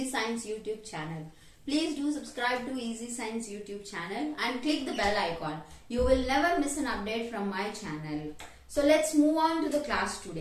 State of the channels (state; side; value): identical; both; correlation 1.00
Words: Science YouTube channel. Please do subscribe to Easy Science YouTube channel and click the bell icon. You will never miss an update from my channel. So let's move on to the class